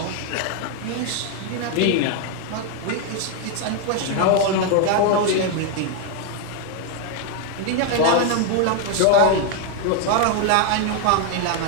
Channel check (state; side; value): different; both; correlation 0.01